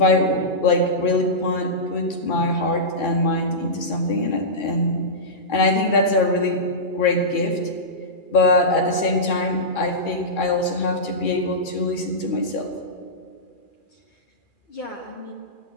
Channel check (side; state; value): right; late; 2.4 ms